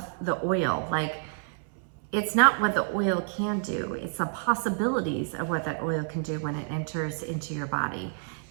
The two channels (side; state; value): left; silent; 59 dB below the other